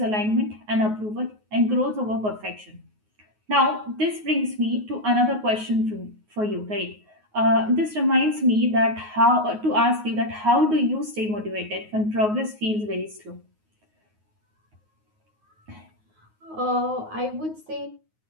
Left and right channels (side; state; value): left; late; 9.5 ms